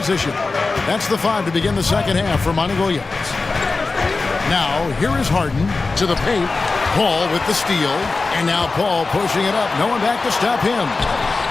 That's the 5 to begin the second half for Monty Williams. Now, here is Harden to the paint. Paul with the steal. And now Paul pushing it up. No one back to stop him.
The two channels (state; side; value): quieter; right; 3.8 dB